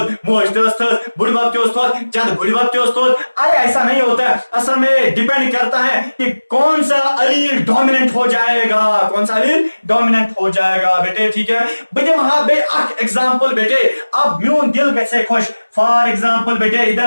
मोज थस बुढ़बाप थोद जद बुढ़बाप थोद, अरे ऐसा नहीं होता है। असल में डिपेंड करता है कि कौन सा अलील डोमिनेंट हो जाएगा, कौन सा अलील डोमिनेंट हो जाएगा बेटे। ठीक है बेटे? वहां पे एग्जांपल बेटे अब म्यून दिल कैसे खुश। फॉर एग्जाम्पल बेटे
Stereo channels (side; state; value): both; inverted; correlation -1.00